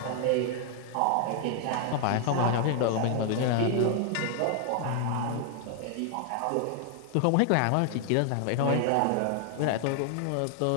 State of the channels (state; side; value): different; both; correlation 0.00